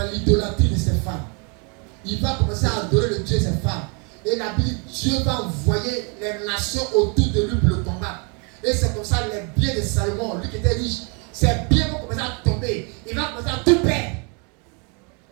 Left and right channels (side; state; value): left; quieter; 35.0 dB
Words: l'idolâtrie de ses femmes. Il va commencer à adorer le Dieu de ses femmes. Et la Bible dit, Dieu va envoyer les nations autour de lui pour le combattre. Et c'est comme ça les biens de Salomon, lui qui était riche, ses biens vont commencer à tomber. Il va commencer à tout perdre.